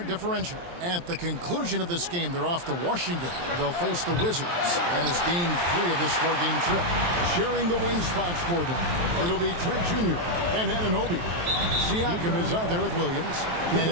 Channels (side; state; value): left; late; 23 ms